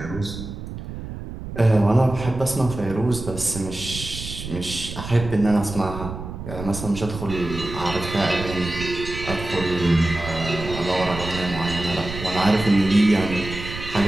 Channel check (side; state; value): right; noise; rumble, 9 dB below the sound